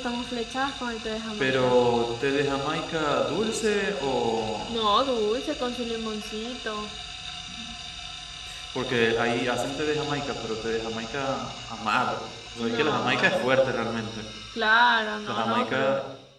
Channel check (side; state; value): both; identical; correlation 1.00